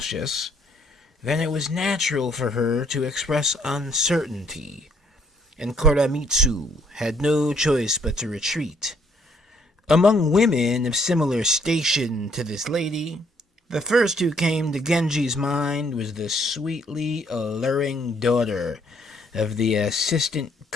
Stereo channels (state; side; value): normal; both; correlation 0.66